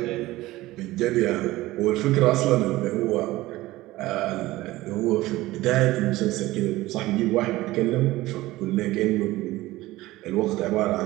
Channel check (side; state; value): left; quieter; 17.9 dB